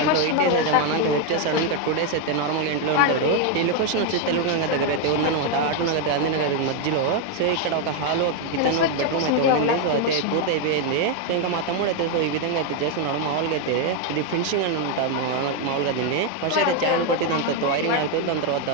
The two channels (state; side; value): different; both; correlation 0.01